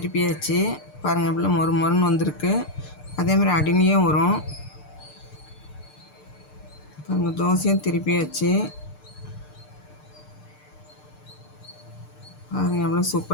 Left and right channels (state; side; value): late; right; 6.7 ms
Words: பாருங்கள், எவ்வளோ மொறுன்னு வந்திருக்கு. அதேமாதிரி அடிமையும் வரும் பாருங்கள். தோசையும் திருப்பியாச்சு பாருங்கள், எவ்வளோ